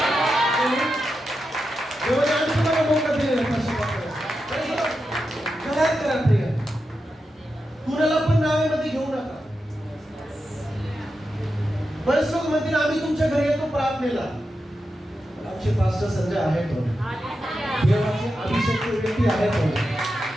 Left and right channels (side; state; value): both; normal; correlation 0.89